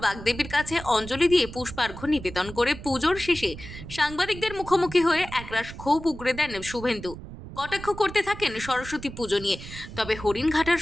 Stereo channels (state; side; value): noise; right; rumble, 13 dB below the sound